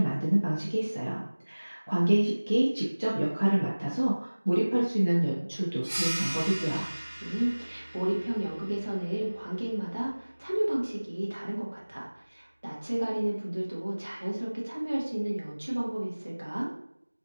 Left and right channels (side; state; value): both; inverted; correlation -1.00